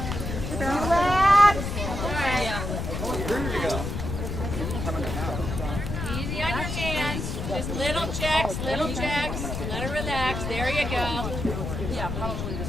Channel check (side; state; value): left; noise; rumble, 4 dB below the sound